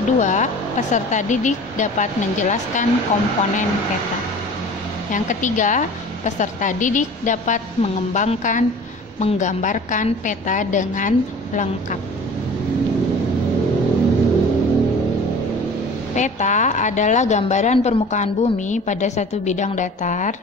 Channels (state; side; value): normal; both; correlation 0.42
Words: kedua, peserta didik dapat menjelaskan komponen peta. Yang ketiga, peserta didik dapat menggambarkan peta dengan lengkap. Peta adalah gambaran permukaan bumi pada satu bidang datar